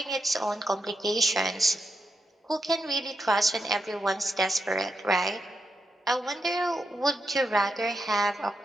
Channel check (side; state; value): both; normal; correlation 0.85